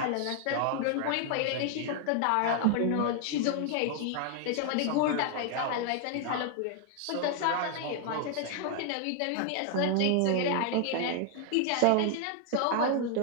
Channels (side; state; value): both; different; correlation 0.00